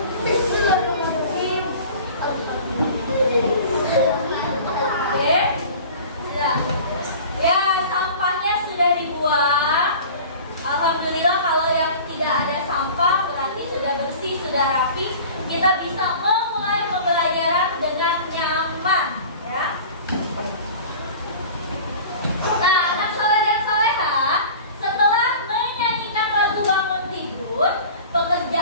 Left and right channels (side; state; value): both; inverted; correlation -0.40